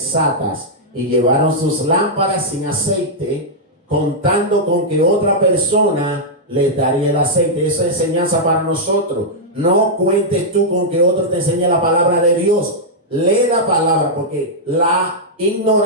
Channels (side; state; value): both; normal; correlation -0.07